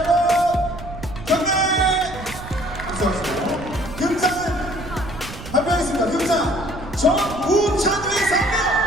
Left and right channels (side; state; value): right; noise; rumble, 13 dB below the sound